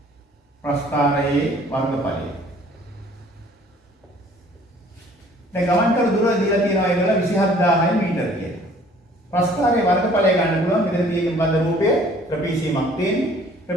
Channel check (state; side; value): normal; both; correlation 0.55